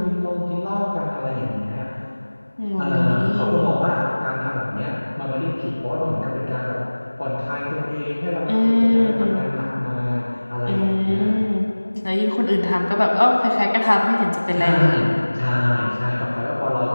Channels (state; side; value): inverted; both; correlation -1.00